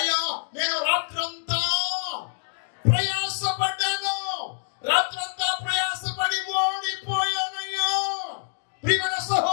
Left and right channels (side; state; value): right; silent; digital silence